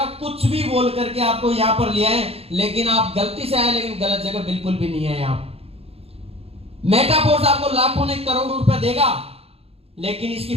कुछ भी बोल करके आपको यहां पर ले आए, लेकिन आप गलती से आए, लेकिन गलत जगह बिल्कुल भी नहीं है। आप मेटाफोर्स आपको लाखों ने करोड़ों रुपए देगा, लेकिन इसकी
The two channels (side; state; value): left; late; 0.29 ms